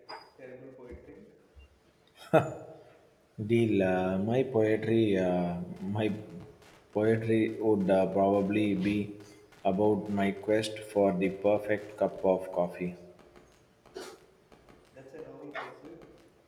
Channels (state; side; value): identical; both; correlation 1.00